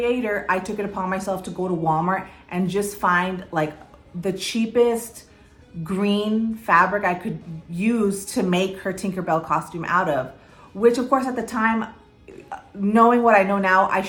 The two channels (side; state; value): both; identical; correlation 1.00